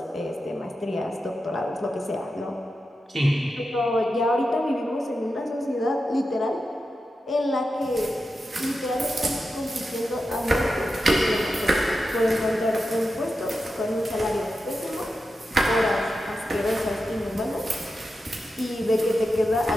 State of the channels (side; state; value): both; normal; correlation 0.90